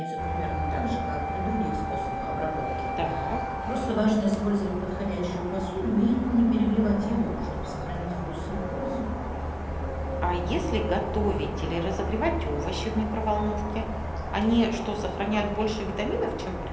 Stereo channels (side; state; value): both; identical; correlation 1.00